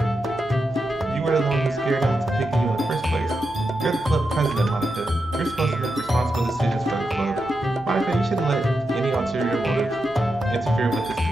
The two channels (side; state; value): both; normal; correlation 0.87